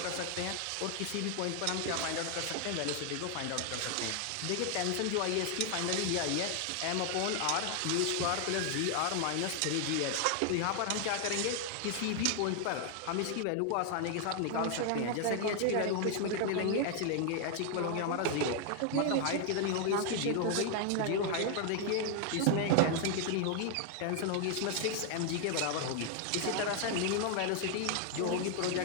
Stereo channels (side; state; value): both; different; correlation 0.00